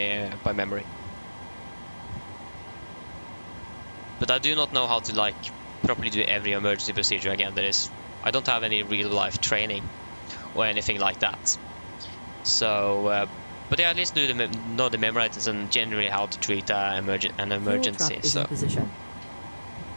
memory. But I do not know how to, like, properly do every emergency procedure again. I don't have any real life training or anything like that. So, but yeah, at least know the memory items and generally how to treat an emergency. Fuel truck is in So, position.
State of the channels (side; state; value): both; inverted; correlation -1.00